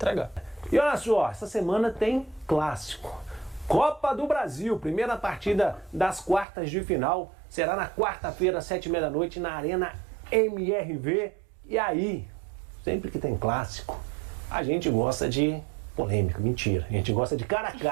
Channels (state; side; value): drops out; left; at 6.5 s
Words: E olha só, essa semana tem clássico. Copa do Brasil, primeira partida das quartas de final. Será na quarta-feira, 7h30 na Arena MRV. E aí, sempre que tem clássico, a gente gosta de polêmica. Mentira, a gente gosta de cara a